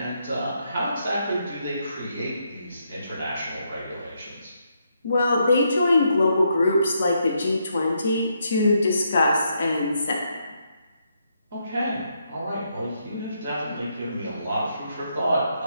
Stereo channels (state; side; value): inverted; both; correlation -0.78